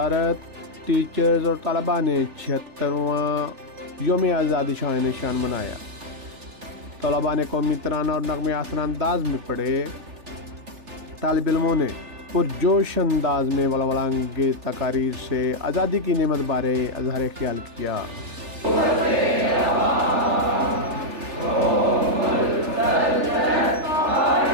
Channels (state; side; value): late; left; 3.4 ms